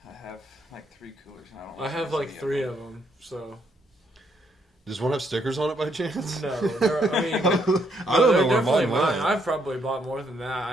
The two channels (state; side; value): normal; both; correlation 0.73